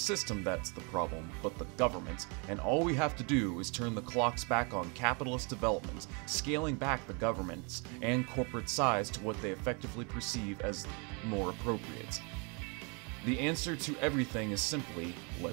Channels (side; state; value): left; quieter; 33.3 dB